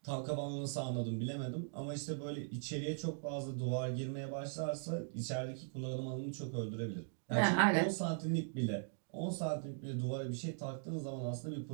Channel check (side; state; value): left; silent; digital silence